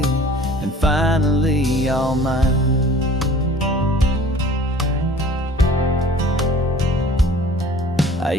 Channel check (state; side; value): normal; both; correlation 0.49